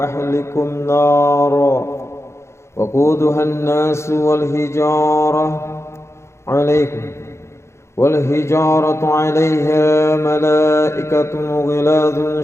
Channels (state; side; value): late; right; 0.13 ms